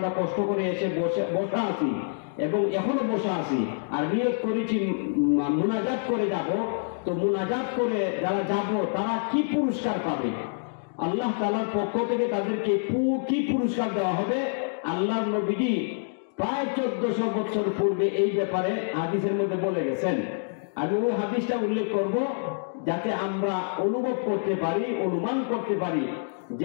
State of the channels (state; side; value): silent; right; digital silence